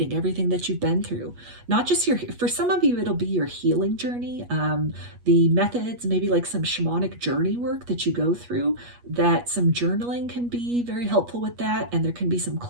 everything that you've been through. Not just for some of you, it'll be your healing journey, the methods, maybe like some shamanic journey work that you go through, that some journaling can be very helpful with that. And there can be some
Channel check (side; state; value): left; late; 8.3 ms